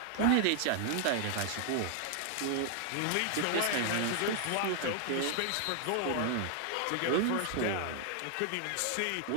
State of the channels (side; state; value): both; different; correlation 0.00